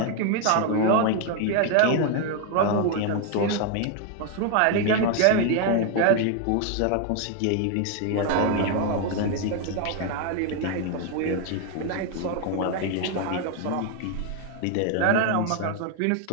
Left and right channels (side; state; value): both; different; correlation 0.01